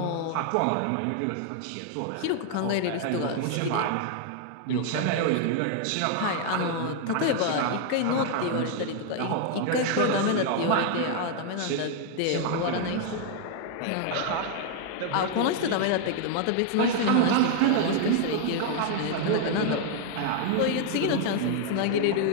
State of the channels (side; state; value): both; different; correlation 0.00